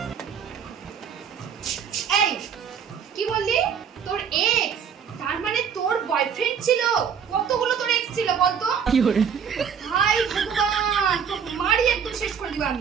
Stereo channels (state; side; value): quieter; left; 7.3 dB